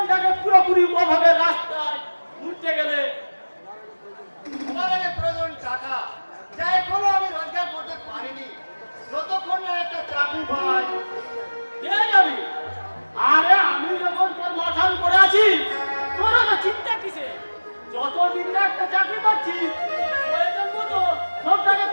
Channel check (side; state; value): both; inverted; correlation -1.00